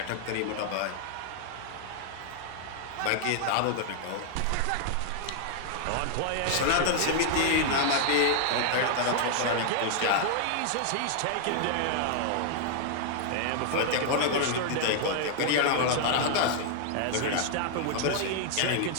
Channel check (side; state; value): both; different; correlation 0.00